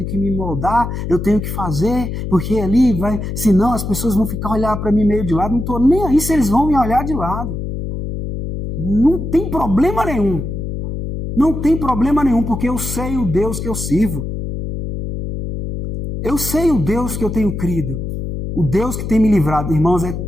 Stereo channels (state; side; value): noise; left; hum, 5 dB below the sound